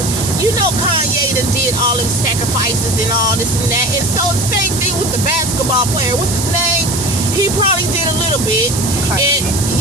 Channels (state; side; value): noise; right; hiss, 3 dB below the sound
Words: You know, Kanye done did all them sacrifices and all this and that. And so the same thing with the basketball player. What's his name? He probably did a little bit. Kyrie. And